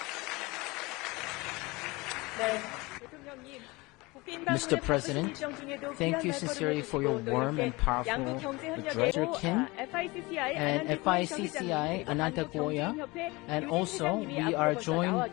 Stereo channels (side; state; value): right; quieter; 23.5 dB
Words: Mr. President, thank you sincerely for your warm and powerful address, Mr. Kim and FICCI Ananta Goya, and also we are joined